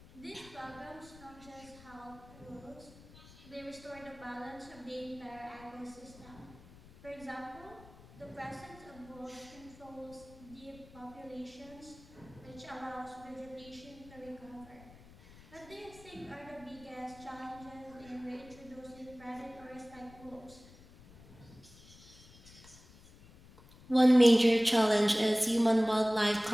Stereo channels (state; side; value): noise; left; rumble, 21 dB below the sound